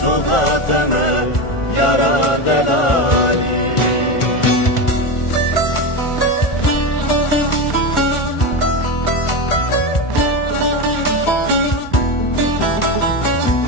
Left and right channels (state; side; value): late; right; 1.4 ms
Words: سوزاتمه یارا دلالی